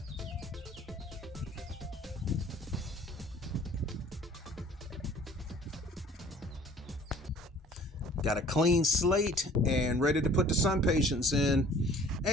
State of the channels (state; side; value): normal; both; correlation 0.52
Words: Got a clean slate and ready to put the sun patients in.